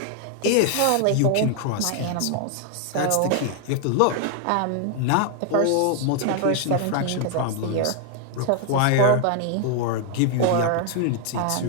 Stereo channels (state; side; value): different; both; correlation 0.00